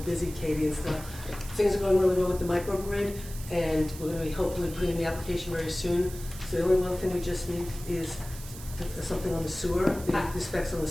Katie and stuff. Things are going really well with the microgrid, and we're going to be hopefully putting in the application very soon. So the only one thing we just need is something on the sewer, the specs on the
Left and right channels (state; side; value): noise; right; hiss, 15 dB below the sound